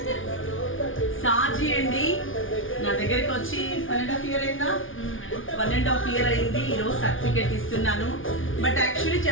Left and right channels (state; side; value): late; right; 0.57 ms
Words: సాజీ అండి నా దగ్గరికి వచ్చి 1.5 year అయిందా? 1.5 year అయింది. ఈరోజు సర్టిఫికేట్ ఇస్తున్నాను. బట్ యాక్చువల్లీ